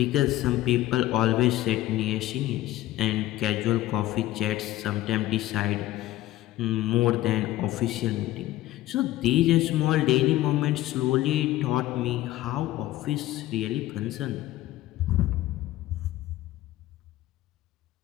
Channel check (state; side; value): quieter; right; 15.4 dB